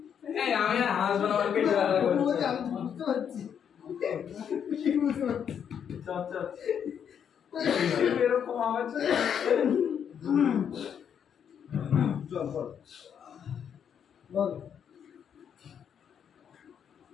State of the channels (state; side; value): quieter; right; 8.1 dB